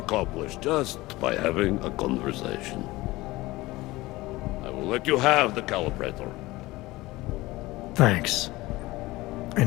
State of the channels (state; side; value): quieter; right; 19.6 dB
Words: just by having a conversation. I will let you have the calibrator. Thanks.